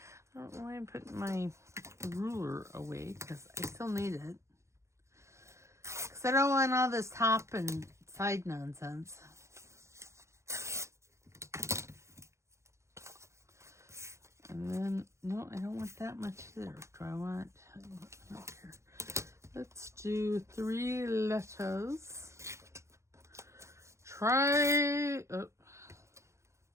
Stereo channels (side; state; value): left; late; 0.14 ms